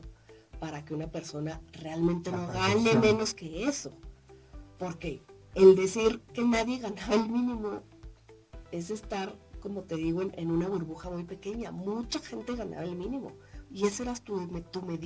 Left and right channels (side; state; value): both; identical; correlation 1.00